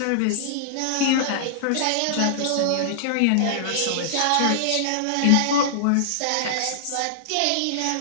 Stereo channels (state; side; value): different; both; correlation -0.01